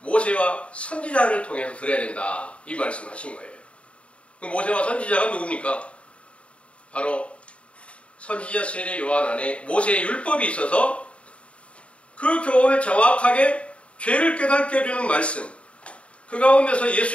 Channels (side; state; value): right; late; 0.062 ms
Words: 모세와 선지자를 통해서 들어야 된다. 이 말씀을 하신 거예요. 그 모세와 선지자가 누굽니까? 바로 선지자 세례 요한 안에 모세의 율법이 있어서 그 교훈을 정확하게 죄를 깨닫게 해주는 말씀, 그 가운데서